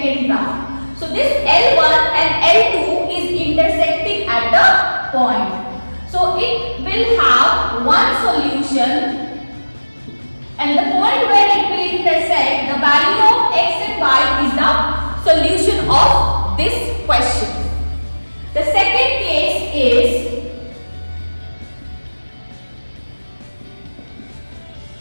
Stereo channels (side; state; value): both; inverted; correlation -1.00